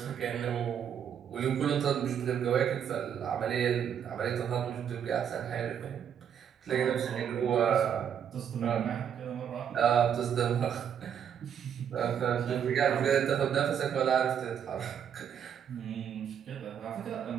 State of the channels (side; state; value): left; quieter; 8.5 dB